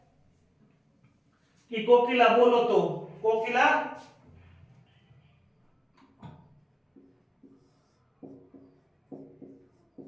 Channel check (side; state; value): both; identical; correlation 1.00